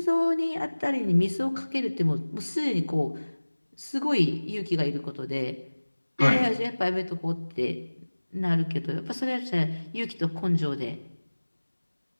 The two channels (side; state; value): both; inverted; correlation -1.00